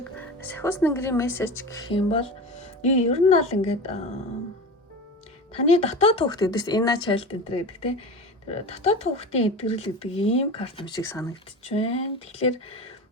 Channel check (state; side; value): normal; both; correlation 0.29